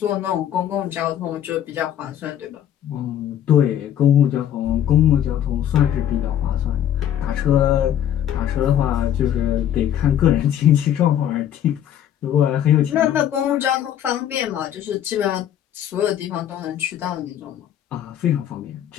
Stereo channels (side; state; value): right; quieter; 10.4 dB